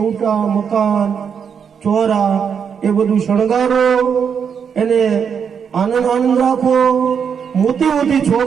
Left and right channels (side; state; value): left; quieter; 7.1 dB